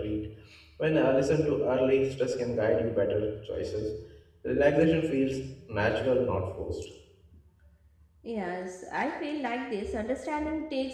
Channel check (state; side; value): identical; both; correlation 1.00